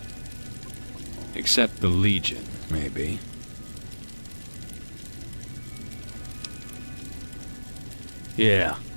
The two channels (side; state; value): both; inverted; correlation -1.00